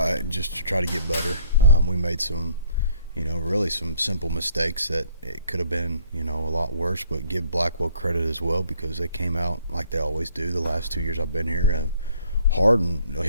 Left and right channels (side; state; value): both; inverted; correlation -0.62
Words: Just to try to get better. We made some, really some simple mistakes that it could have been, a lot worse. But give Blackwell credit as well because they came out like they always do. The last 2 years I've been here, hard and